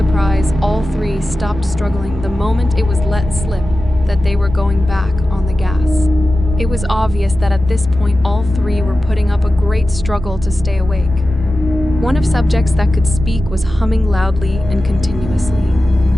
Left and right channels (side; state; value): both; normal; correlation 0.94